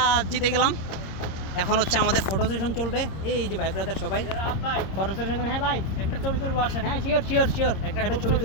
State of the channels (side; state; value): right; late; 26 ms